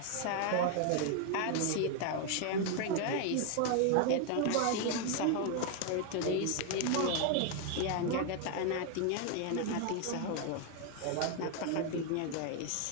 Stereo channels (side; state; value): both; different; correlation 0.01